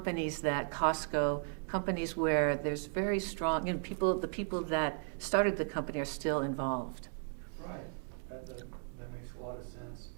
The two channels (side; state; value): left; silent; 54 dB below the other